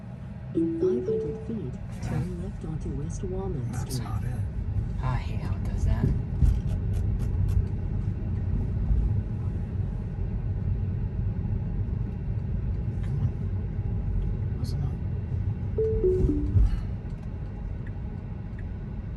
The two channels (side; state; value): both; identical; correlation 1.00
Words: In 500 feet, turn left onto West Walnut That's Street. not it. I hate how it does that. Come on. Was it not?